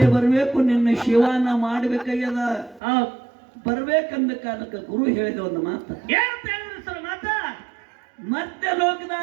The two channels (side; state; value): left; drops out; at 2.8 s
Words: ಬರ್ಬೇಕು, ನಿನ್ನ ಶಿವನ ಮಾಡ್ಬೇಕಾಗ್ಯದ. ಹೌದು ಬರ್ಬೇಕಂದ ಕಾಲಕ್ಕೆ ಗುರು ಹೇಳಿದ ಒಂದು ಮಾತು, ಏನಂತ ಹೇಳಿದ್ರಿ ಸರ್ ಮಾತ? ಮತ್ತೆ